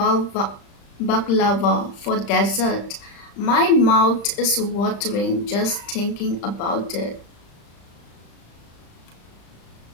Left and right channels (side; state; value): right; late; 35 ms